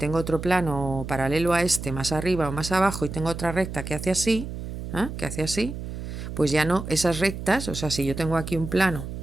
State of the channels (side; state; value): right; noise; hum, 8 dB below the sound